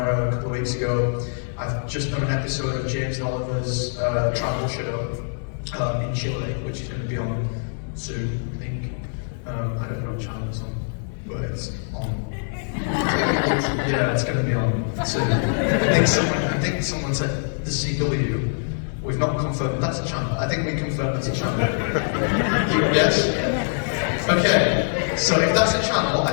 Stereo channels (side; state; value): right; silent; digital silence